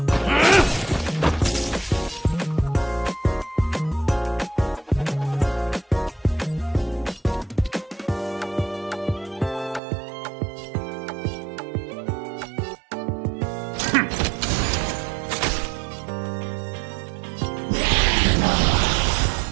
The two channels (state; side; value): drops out; left; at 9.8 s